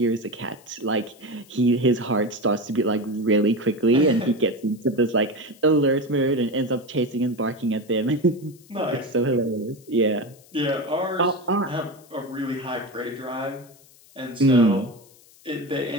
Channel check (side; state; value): left; noise; hiss, 26 dB below the sound